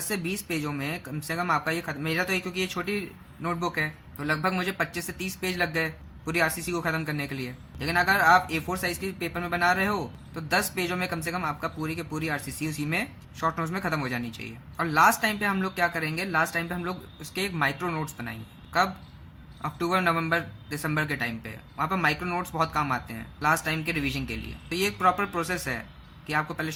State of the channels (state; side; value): identical; both; correlation 1.00